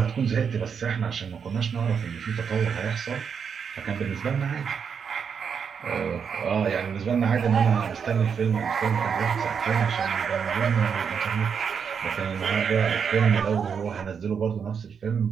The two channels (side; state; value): left; quieter; 6.7 dB